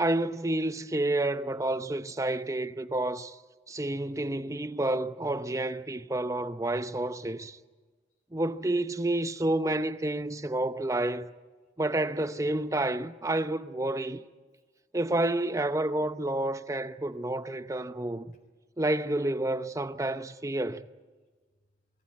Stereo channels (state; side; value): normal; both; correlation 0.70